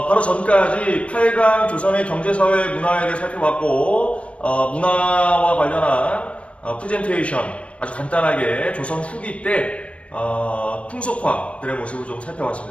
바로 전까지 8강 조선의 경제사회 문화에 대해 살펴봤고 문화와 관련한 프레젠테이션 아주 간단하게 조선 후기 때 풍속화들의 모습을 좀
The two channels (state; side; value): late; right; 0.062 ms